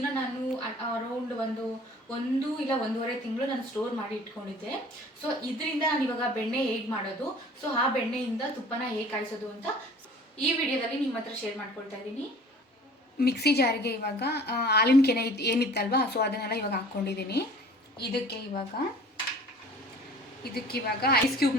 ನಾನು ಅರೌಂಡ್ ಒಂದು ಇಲ್ಲ ಒಂದೂವರೆ ತಿಂಗಳು ನಾನು ಸ್ಟೋರ್ ಮಾಡಿ ಇಟ್ಕೊಂಡಿದ್ದೆ. ಸೊ ಇದರಿಂದ ನಾನು ಇವಾಗ ಬೆಣ್ಣೆ ಹೇಗೆ ಮಾಡೋದು, ಸೊ ಆ ಬೆಣ್ಣೆಯಿಂದ ತುಪ್ಪನ ಹೇಗೆ ಕಾಯಿಸೋದು ಅಂತ ಈ ವಿಡಿಯೋದಲ್ಲಿ ನಿಮ್ಮ ಹತ್ರ ಶೇರ್ ಮಾಡ್ಕೊಳ್ತಾ ಇದ್ದೀನಿ. ಮಿಕ್ಸಿ ಜಾರಿಗೆ ಇವಾಗ ಹಾಲಿನ ಕೆನೆ ಏನಿತ್ತಲ್ವಾ, ಸೊ ಅದನ್ನೆಲ್ಲ ಇವಾಗ ಹಾಕ್ಕೊಂಡಿದ್ದೀನಿ. ಇದಕ್ಕೆ ಇವಾಗ ಐಸ್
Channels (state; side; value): normal; both; correlation 0.47